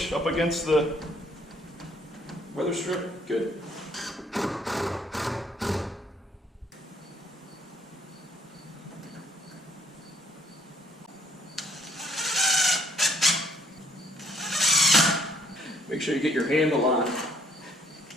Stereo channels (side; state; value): both; normal; correlation 0.65